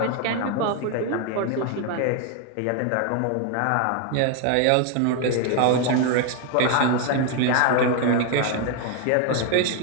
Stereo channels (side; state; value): both; different; correlation 0.01